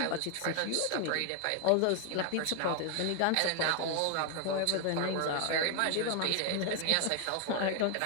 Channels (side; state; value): both; different; correlation 0.01